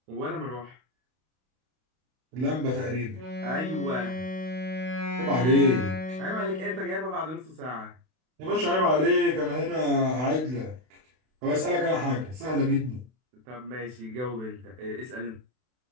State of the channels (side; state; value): left; late; 32 ms